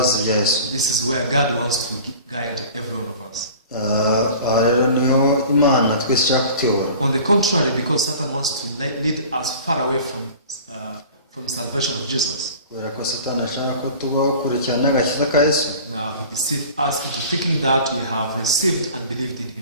bya Yesu. This is where God wants to guide every one of us. Rero niho Imana twese ishaka kutuyobora. On the contrary, because Satan wants to lead us far away from salvation of Jesus. Kubera ko Satani ashaka ko tubaho kurikirana agakiza ka Yesu. Now he deceived us into thinking that we have received and believed in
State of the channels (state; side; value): inverted; both; correlation -0.42